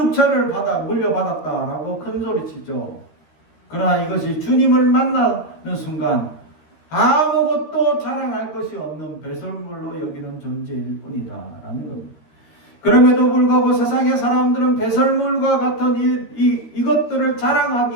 물려받았다라고 큰소리치죠. 그러나 이것이 주님을 만나는 순간 아무것도 자랑할 것이 없는 배설물로 여기는 존재일 뿐이다 라는 겁니다. 그럼에도 불구하고 세상의 사람들은 배설물과 같은 이것들을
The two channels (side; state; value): right; late; 13 ms